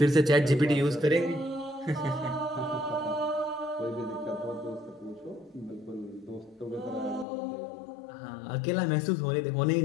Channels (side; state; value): right; drops out; at 7.2 s